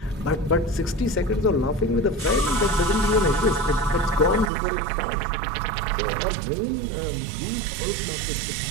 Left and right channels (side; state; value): left; drops out; at 4.5 s